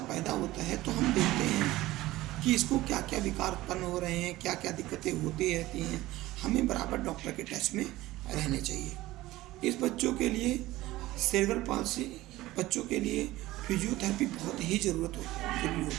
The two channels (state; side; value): quieter; left; 17.3 dB